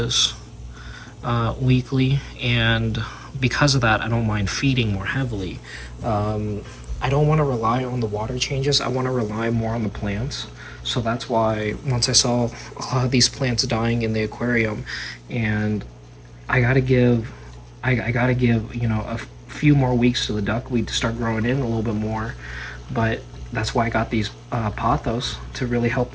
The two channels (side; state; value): both; identical; correlation 1.00